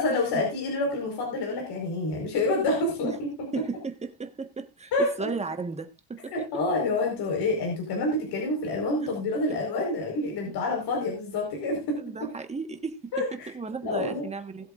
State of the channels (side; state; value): both; normal; correlation -0.03